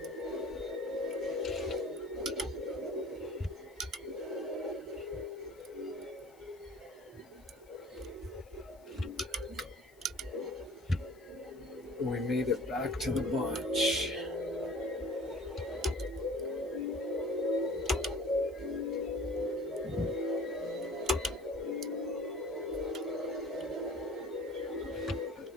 We made it back to the bunch.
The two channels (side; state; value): left; noise; hiss, 29 dB below the sound